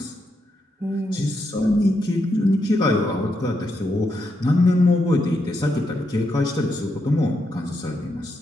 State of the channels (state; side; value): normal; both; correlation 0.82